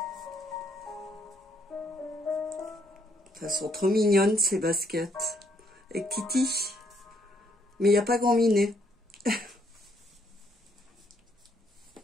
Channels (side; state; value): both; normal; correlation 0.70